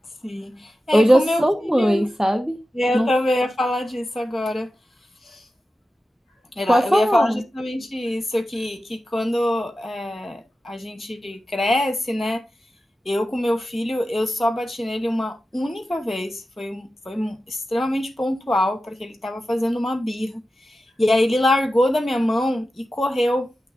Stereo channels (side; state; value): both; normal; correlation 0.93